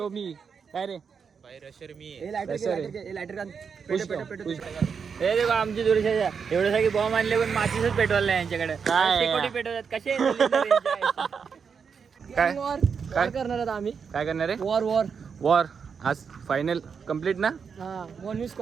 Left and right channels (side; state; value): left; quieter; 6.2 dB